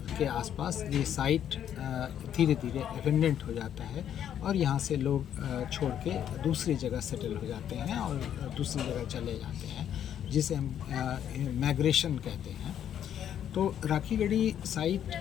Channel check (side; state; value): right; quieter; 9.8 dB